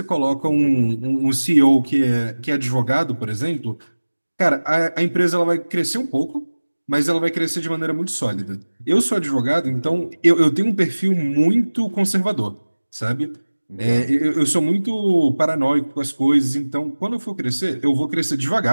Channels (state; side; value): inverted; both; correlation -1.00